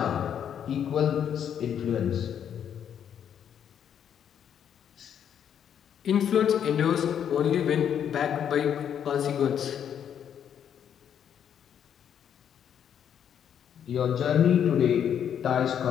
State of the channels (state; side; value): quieter; right; 8.8 dB